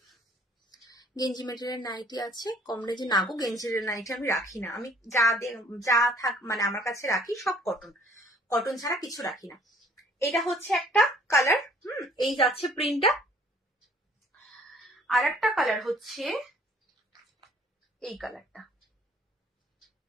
গেঞ্জি মেটেরিয়াল নাইটি আছে, কম রেঞ্জে না গো, গেঞ্জির নাইটি আমি রাখি না, আমি যা থাক মানে আমার কাছে রাখি সব কটন, কটন ছাড়া কিছু রাখি না। এটা হচ্ছে একটা কালার, এই যাচ্ছে প্রিন্টটা। আর একটা কালার হচ্ছে এই কালারটা,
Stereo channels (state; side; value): normal; both; correlation 0.57